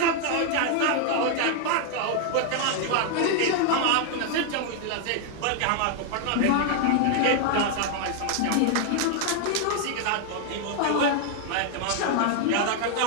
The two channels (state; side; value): different; both; correlation 0.00